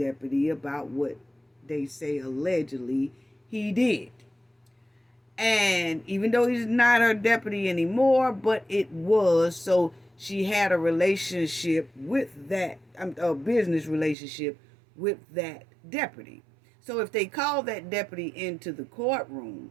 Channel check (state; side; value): drops out; left; at 14.2 s